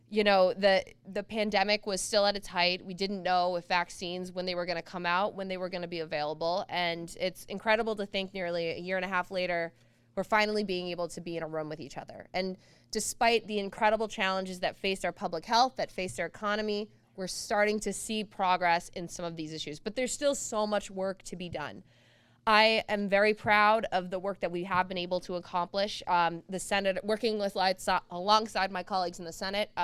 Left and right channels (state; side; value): identical; both; correlation 1.00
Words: you know, the pandemic was still at its height. We didn't know if vaccines, when they were going to come out, when they were going to be available. And it's incredible to think nearly a year and a half later, we're finally being able to be in a room with each other. And despite the incredible challenges that faced our public health, that faced our economy, we're starting to see progress in some of these issues. But there's still so much work to be done. I am very proud of the work that we have been able to accomplish. The Senate, working with alongside my colleagues in the Senate,